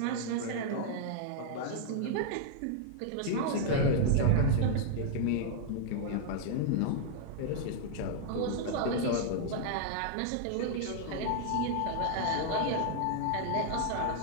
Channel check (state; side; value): different; both; correlation -0.01